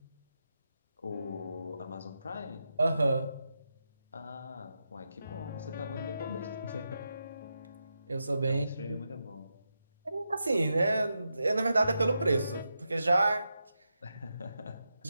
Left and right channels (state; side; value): inverted; both; correlation -0.87